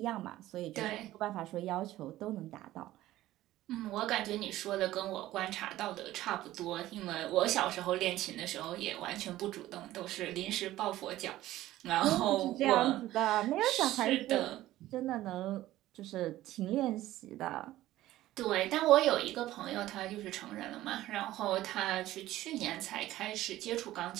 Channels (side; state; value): left; quieter; 15.2 dB